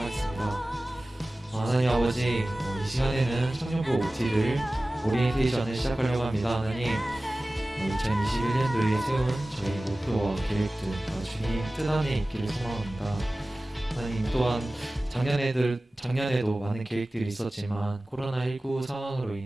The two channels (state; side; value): normal; both; correlation 0.97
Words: 하겠습니다. 하나님 아버지, 이 시간에는 청년부 OT를 오리엔테이션을 시작하려고 합니다. 하나님, 2021년도에 세운 저희 목표와 계획들 다 주님 뜻 안에 있기를 소망합니다. 하나님, 또한 작년에도 많은 계획들이 있었지만 코로나19 상황으로